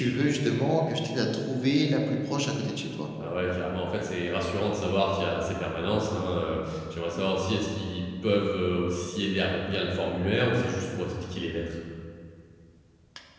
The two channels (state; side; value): identical; both; correlation 1.00